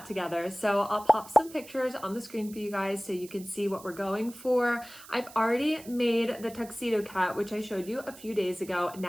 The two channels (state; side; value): noise; right; hiss, 19 dB below the sound